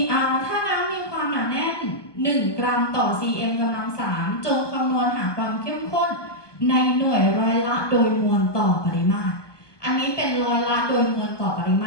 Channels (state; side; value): late; right; 1.2 ms